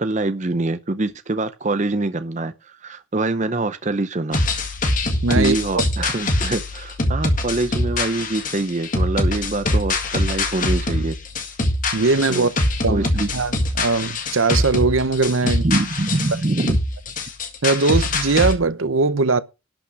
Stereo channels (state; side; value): normal; both; correlation 0.38